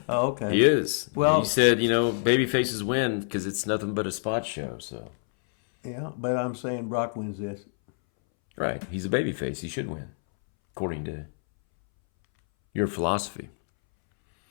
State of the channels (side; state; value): right; silent; 60 dB below the other